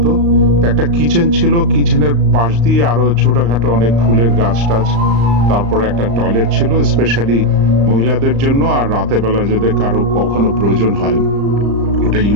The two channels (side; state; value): left; late; 35 ms